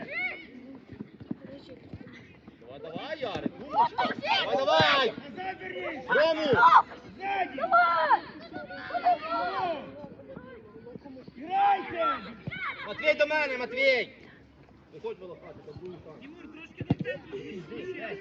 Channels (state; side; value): identical; both; correlation 1.00